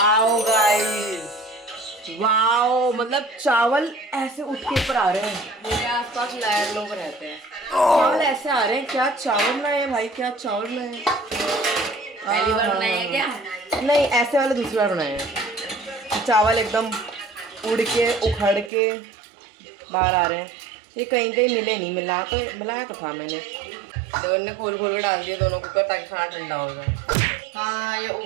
गाइस, वाओ, मतलब चावल ऐसे उठ के ऊपर आ रहे हैं। मेरे आसपास लायर लोग रहते हैं, चावल ऐसे आ रहे हैं, क्या चावल बनाए हैं भाई, क्या चावल बनाए हैं। पहली बार बनाए हैं क्या? नहीं, ऐसे वाले दूसरी बार बनाए हैं। चावल एकदम उड़ के उखड़ के बाहर आ रहे हैं। ये कहीं कहीं मिले नहीं, मिलाया तो था मैंने, देवन ने खोल खोल के डाल दिया दोनों कुकर ताकि खाना ठंडा हो जाए। हाँ, ये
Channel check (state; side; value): drops out; left; at 18.7 s